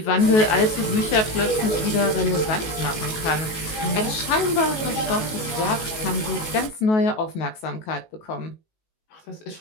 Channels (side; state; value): right; late; 19 ms